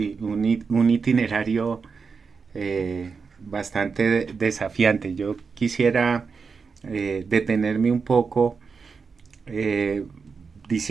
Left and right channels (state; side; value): quieter; left; 5.2 dB